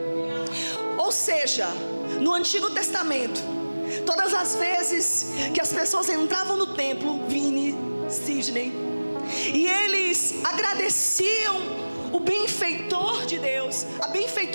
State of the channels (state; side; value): inverted; both; correlation -1.00